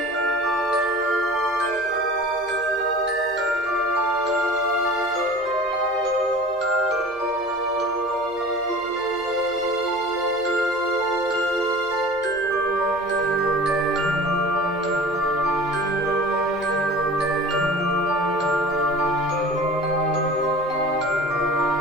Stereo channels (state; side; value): noise; left; hum, 28 dB below the sound